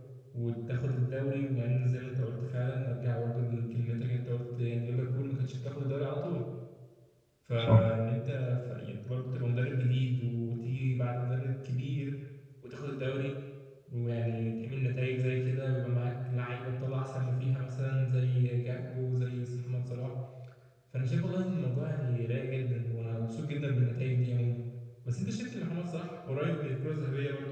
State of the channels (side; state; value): both; identical; correlation 1.00